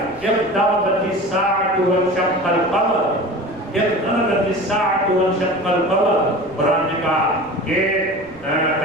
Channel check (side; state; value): right; noise; rumble, 23 dB below the sound